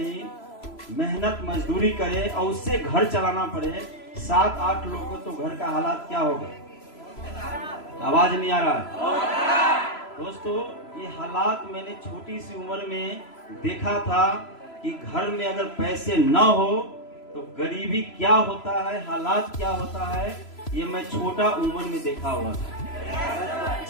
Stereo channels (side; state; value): right; late; 3.0 ms